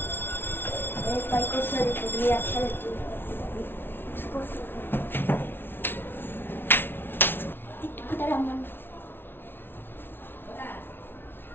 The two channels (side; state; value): right; late; 0.11 ms